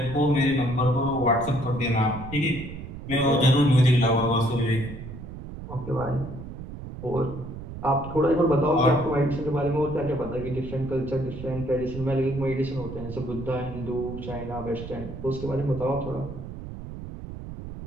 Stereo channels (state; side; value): noise; right; rumble, 10 dB below the sound